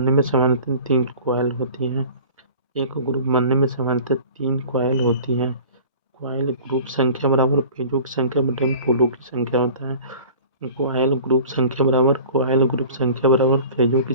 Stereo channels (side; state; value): both; inverted; correlation -0.43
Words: में सामान्यतः 3 कॉइल होती हैं। कॉइल ग्रुप संख्या बराबर पेजों की संख्या बटे में पोलों की संख्या होता है। कॉइल ग्रुप संख्या बराबर पेजों की